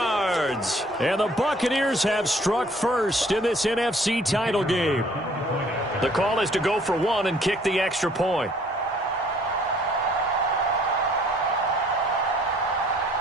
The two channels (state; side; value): normal; both; correlation 0.58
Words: And the Buccaneers have struck first in this NFC title game. The call is to go for one and kick the extra point.